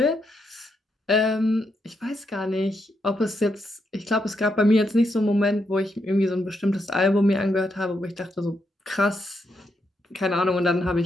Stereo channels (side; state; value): both; normal; correlation 0.80